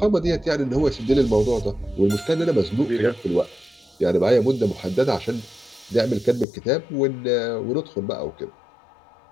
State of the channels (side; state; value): right; drops out; at 6.5 s